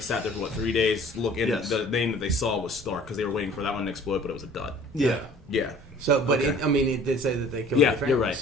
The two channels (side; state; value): both; normal; correlation 0.50